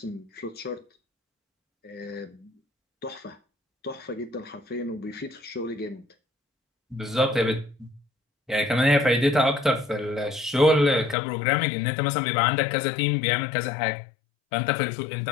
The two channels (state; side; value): drops out; right; at 11.2 s